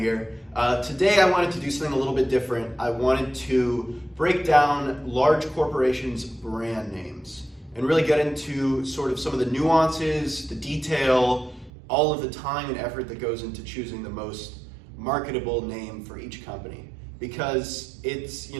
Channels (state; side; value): drops out; left; at 11.7 s